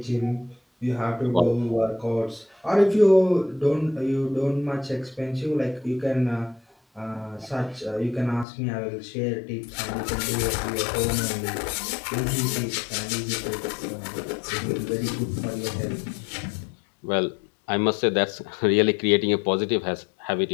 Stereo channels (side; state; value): right; drops out; at 8.5 s